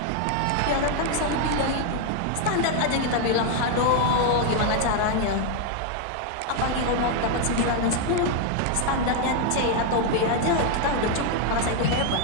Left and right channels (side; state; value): both; different; correlation 0.00